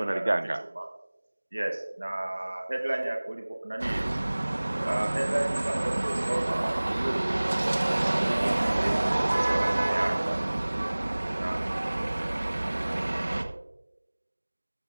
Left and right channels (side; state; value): both; inverted; correlation -1.00